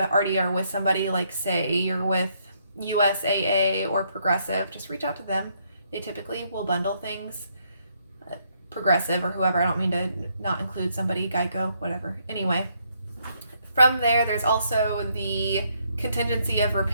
are with somebody, like say you're with USAA or Progressive, just reach out to them. They typically will bundle things. Progressive or whoever, I don't mean to not include somebody, Geico, whatever. Anyway, from there's also the contingency of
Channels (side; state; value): both; inverted; correlation -0.72